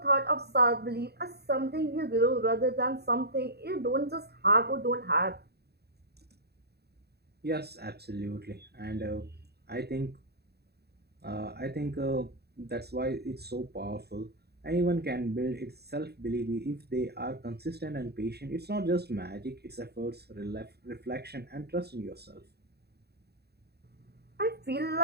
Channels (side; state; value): left; late; 0.47 ms